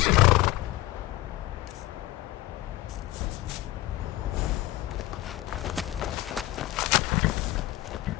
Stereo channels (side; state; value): right; quieter; 17.1 dB